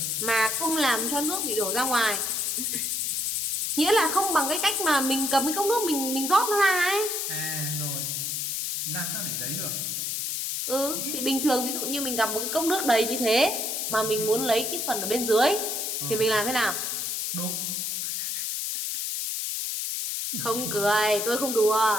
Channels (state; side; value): noise; left; hiss, 2 dB below the sound